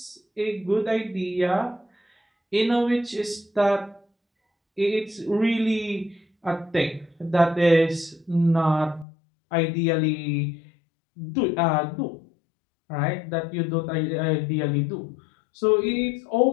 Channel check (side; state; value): right; drops out; at 9.1 s